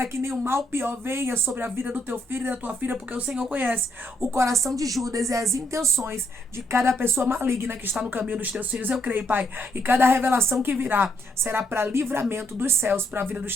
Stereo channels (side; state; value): both; normal; correlation 0.73